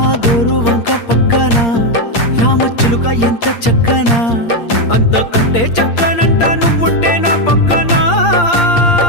గోరు వంక పక్కన రామచిలుక ఎంత చక్కనా అంతకంటే చక్కనంట నువ్వుంటే నా పక్కన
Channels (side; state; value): right; late; 8.7 ms